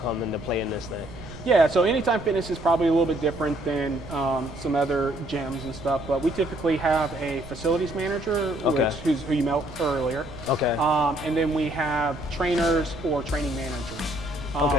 come into play in this thing? Yeah, so Anytime Fitness is probably a little bit different than some other gyms and stuff, but we typically have a facilities manager, who you met earlier. Okay. And then we have trainers or training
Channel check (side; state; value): right; noise; rumble, 15 dB below the sound